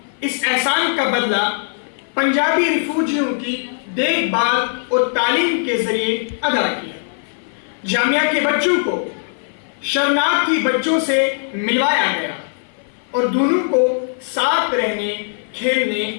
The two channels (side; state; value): right; silent; 55 dB below the other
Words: اس احسان کا بدلہ پنجابی ریفوجیوں کی دیکھ بھال اور تعلیم کے ذریعے ادا کیا۔ جامعہ کے بچوں کو شرناردھی بچوں سے ملوایا گیا اور دونوں کو ساتھ رہنے، کھیلنے